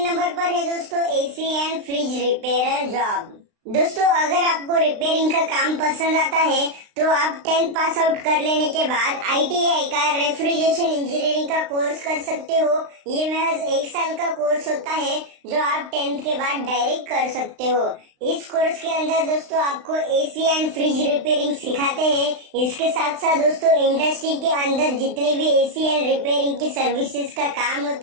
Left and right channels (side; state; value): left; late; 35 ms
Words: नंबर पर है दोस्तों AC and fridge repair job. दोस्तों अगर आपको रिपेयरिंग का काम पसंद आता है तो आप 10th पास आउट कर लेने के बाद ITI का रेफ्रिजरेशन इंजीनियरिंग का कोर्स कर सकते हो। ये महज 1 साल का कोर्स होता है जो आप 10th के बाद डायरेक्ट कर सकते हो। इस कोर्स के अंदर दोस्तों आपको AC एंड फ्रिज रिपेयरिंग सिखाते हैं। इसके साथ साथ दोस्तों इंडस्ट्री के अंदर जितने भी AC एंड रिपेयरिंग की सर्विसेज का काम